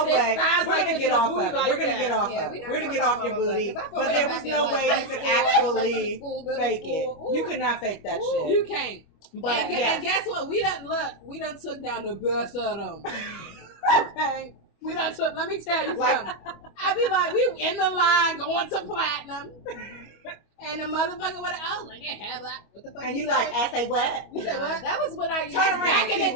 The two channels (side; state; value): right; late; 25 ms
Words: this, way. thighs We're like going to get off of it. We're going to get off of it. We're going to get off your booty. But there was no way you could actually fake it. You could not fake that shit. You can't. But and guess what? We done took down the best of them. Okay. We done took, let me tell you something. I be like, we in the line going to platinum. And the motherfucker would have, like, yeah, what the fuck? And you like, I say what? You said what? That was when I used back in